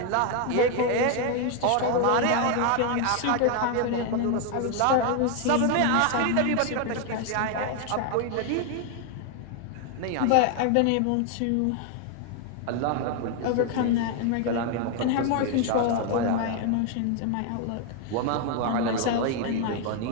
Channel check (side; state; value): both; different; correlation 0.01